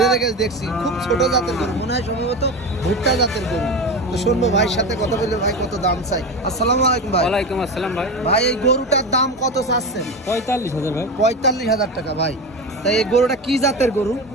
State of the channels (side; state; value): both; normal; correlation 0.23